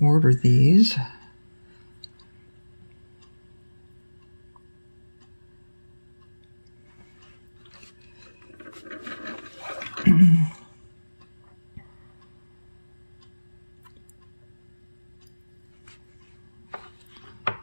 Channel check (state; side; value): inverted; both; correlation -1.00